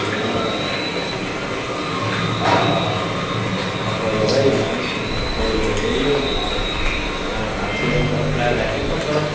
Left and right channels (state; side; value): identical; both; correlation 1.00